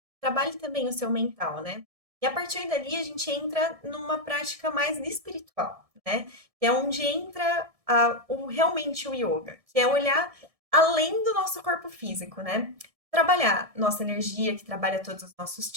trabalhe também o seu mental, né? E a partir dali a gente entra numa prática mais espiritual, né? Que é onde entra realmente o yoga, que é olhar além do nosso corpo físico, né? Trabalhar nossa energia, que trabalha todos os nossos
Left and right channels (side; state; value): left; late; 1.6 ms